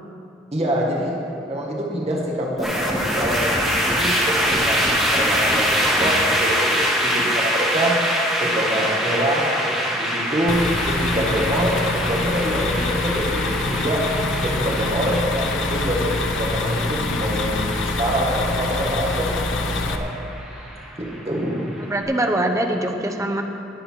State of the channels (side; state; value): both; normal; correlation 0.53